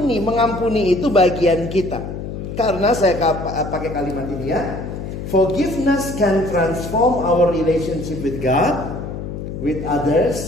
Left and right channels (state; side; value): noise; left; hum, 7 dB below the sound